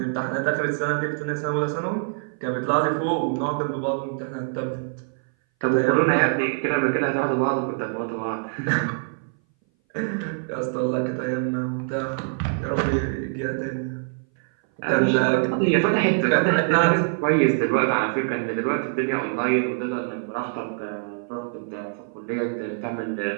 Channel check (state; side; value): silent; left; 59 dB below the other